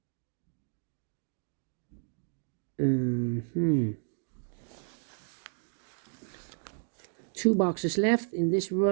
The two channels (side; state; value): left; silent; 56 dB below the other